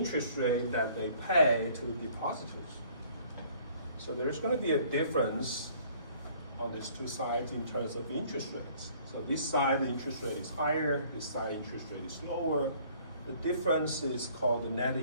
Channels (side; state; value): both; inverted; correlation -0.57